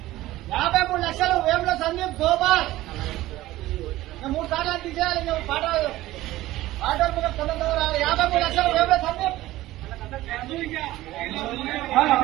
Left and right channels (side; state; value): left; quieter; 16.5 dB